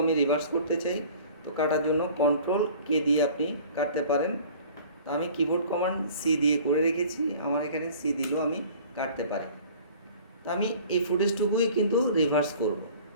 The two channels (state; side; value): inverted; both; correlation -0.47